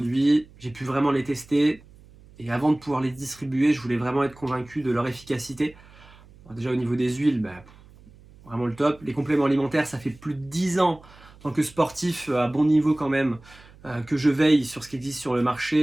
j'ai pu vraiment les tester, et avant de pouvoir les distribuer je voulais vraiment être convaincu de leur efficacité. Alors, déjà au niveau des huiles, vraiment le top. Les compléments alimentaires, ça fait plus de 10 ans en tant que sportif à bon niveau quand même, que je veille sur ce qui existe sur le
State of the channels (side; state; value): right; noise; hum, 24 dB below the sound